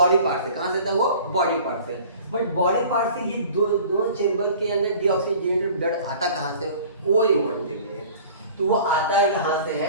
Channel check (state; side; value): inverted; both; correlation -0.45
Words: पार्ट से। कहाँ से था वो, बॉडी पार्ट से। बट बॉडी पार्ट से ये दोनों चेंबर के अंदर डीऑक्सीजनेटेड ब्लड आता कहाँ से, वो इम्पोर्टेंट थिंग है। तो वो आता है कहाँ से